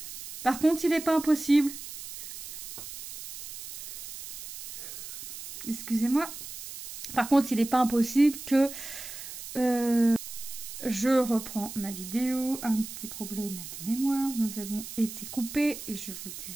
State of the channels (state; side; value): noise; right; hiss, 11 dB below the sound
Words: Par contre, il n'est pas impossible. Excusez-moi. Par contre, il n'est pas impossible que je reprends ma vidéo. Un petit problème de mémoire. Nous avons été coupés et je vous